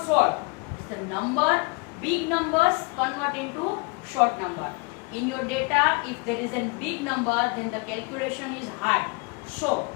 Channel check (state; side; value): quieter; right; 30.1 dB